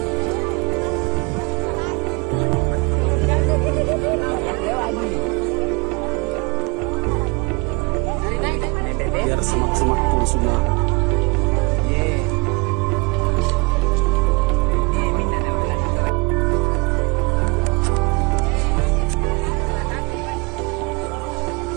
Biar semak-semak pun semua.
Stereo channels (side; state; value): left; quieter; 27.7 dB